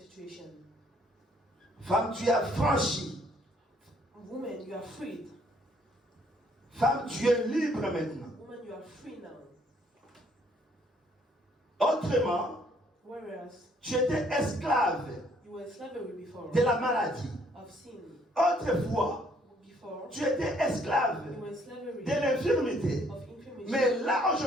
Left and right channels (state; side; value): normal; both; correlation 0.65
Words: Femme, tu as franchi. Woman, you are freed. Femme, tu es libre maintenant. Woman, you are free now. Autrement, Whereas tu étais esclave you were in slavery before, de la maladie. of sin. Autrefois, Before, tu étais esclave you were in slavery de l'infirmité. of infirmity. Mais là,